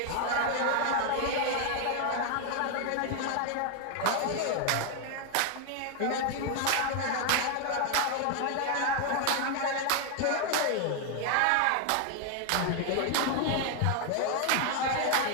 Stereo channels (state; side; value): different; both; correlation 0.00